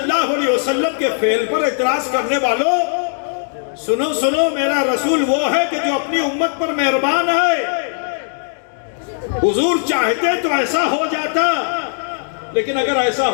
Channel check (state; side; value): silent; right; 67 dB below the other